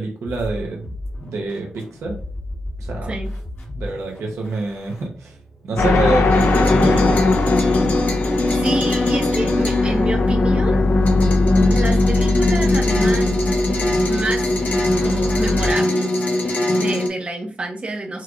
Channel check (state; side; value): normal; both; correlation 0.89